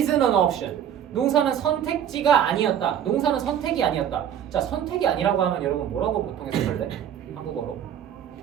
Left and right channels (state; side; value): quieter; left; 9.4 dB